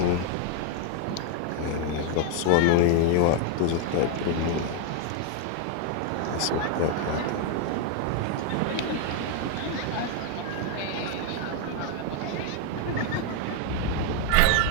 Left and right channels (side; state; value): both; different; correlation 0.00